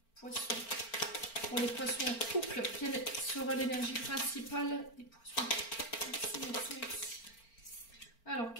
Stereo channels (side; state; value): right; late; 4.4 ms